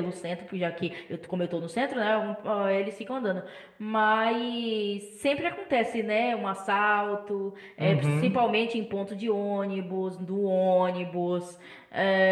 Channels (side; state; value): both; identical; correlation 1.00